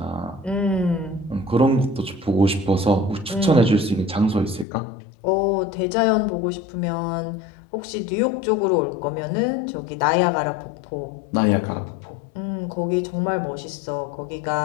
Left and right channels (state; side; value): drops out; right; at 4.7 s